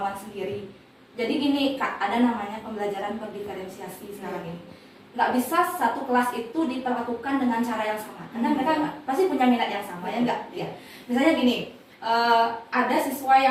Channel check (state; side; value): identical; both; correlation 1.00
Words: sendiri. Jadi gini Kak, ada namanya pembelajaran berdiferensiasi sekarang ini. Nggak bisa satu kelas itu diperlakukan dengan cara yang sama, karena mereka pasti punya minat yang sama, ya enggak? Ya. Misalnya gini, ada siswa